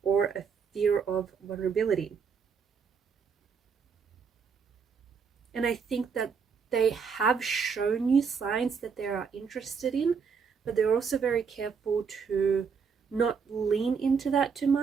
or a fear of vulnerability. And I think that they have shown you signs that they are interested in, but they're also very careful to not lean into that too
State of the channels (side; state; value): left; quieter; 6.0 dB